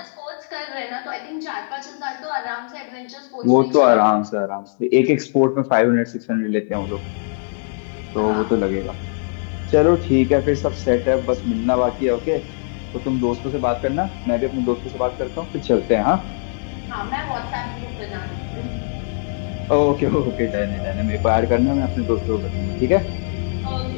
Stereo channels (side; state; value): right; silent; 65 dB below the other